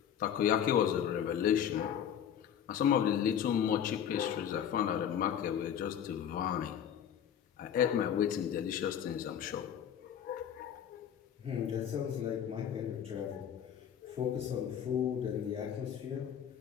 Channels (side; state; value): right; quieter; 9.2 dB